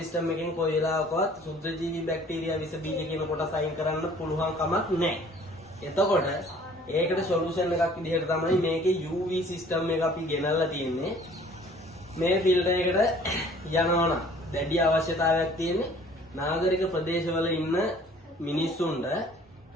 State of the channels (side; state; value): both; normal; correlation 0.53